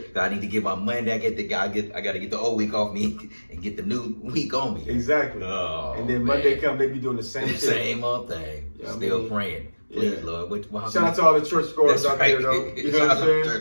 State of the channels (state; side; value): inverted; both; correlation -1.00